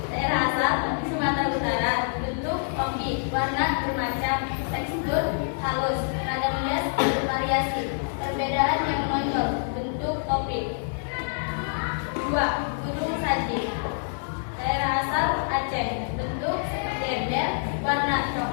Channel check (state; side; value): silent; right; 57 dB below the other